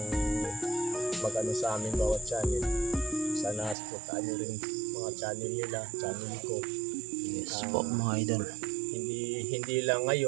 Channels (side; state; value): left; drops out; at 3.8 s